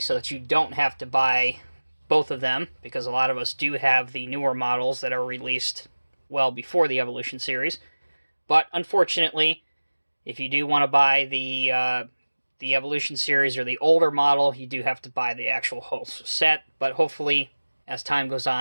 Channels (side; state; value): both; inverted; correlation -1.00